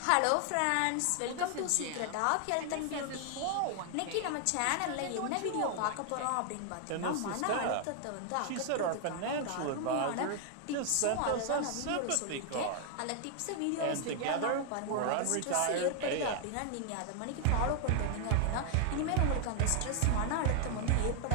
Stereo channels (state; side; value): different; both; correlation 0.00